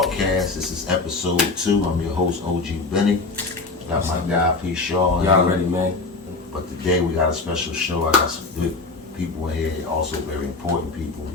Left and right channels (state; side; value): quieter; right; 3.7 dB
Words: This is episode 2. I'm your host, OG Benny. Got my guy, P. Shaw. Y'all ready, man? But today we got a special show. I got some good people in here, also very important people,